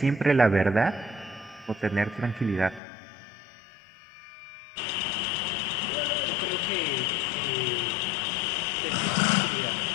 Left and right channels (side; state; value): right; drops out; at 2.8 s